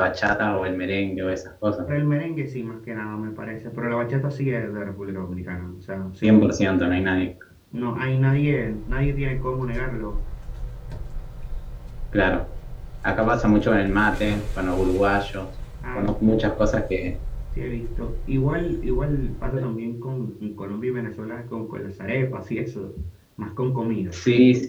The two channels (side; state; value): both; identical; correlation 1.00